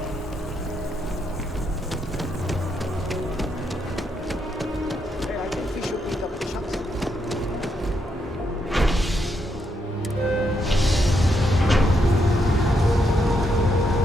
Hey, I think we should meet up the chance.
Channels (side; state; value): both; normal; correlation 0.79